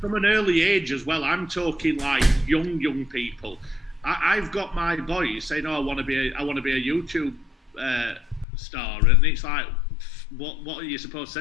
an early age as well. I'm talking like young people. I've got my boys saying, "Oh, I want to be a YouTube star," and it's like, what are you supposed to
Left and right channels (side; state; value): right; drops out; at 8.5 s